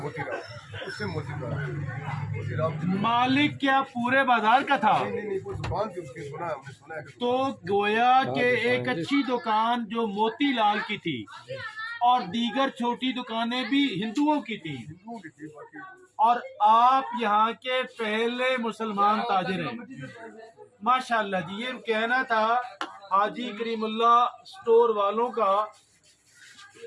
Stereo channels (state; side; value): identical; both; correlation 1.00